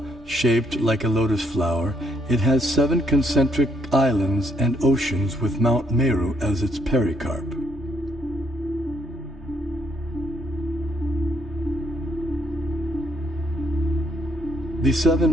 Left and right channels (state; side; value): normal; both; correlation 0.71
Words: shaped like a lotus flower, it has 7 concentric islands and oceans with Mount Meru as its pericarp. The